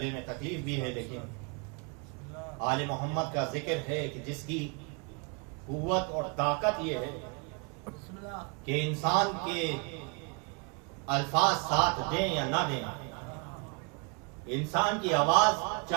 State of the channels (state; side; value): quieter; left; 35.2 dB